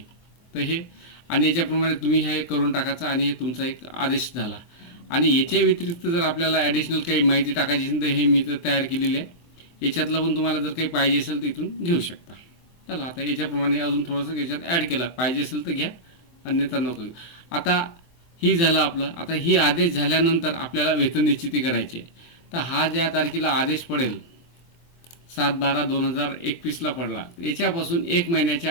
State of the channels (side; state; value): right; late; 24 ms